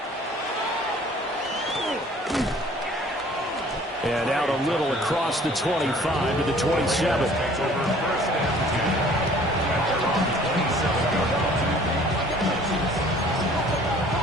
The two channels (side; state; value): both; normal; correlation 0.53